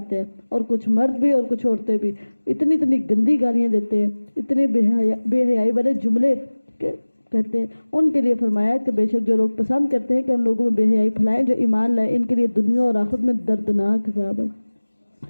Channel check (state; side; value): inverted; both; correlation -1.00